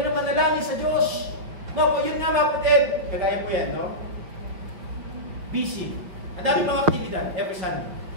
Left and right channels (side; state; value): left; late; 5.8 ms